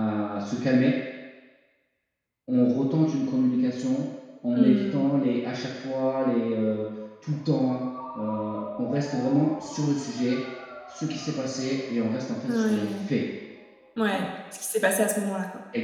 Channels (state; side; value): identical; both; correlation 1.00